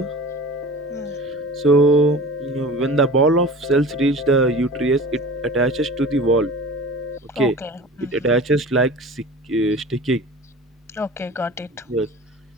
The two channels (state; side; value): normal; both; correlation 0.38